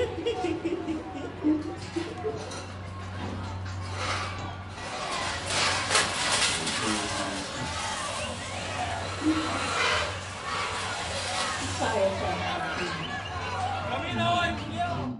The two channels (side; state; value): both; identical; correlation 1.00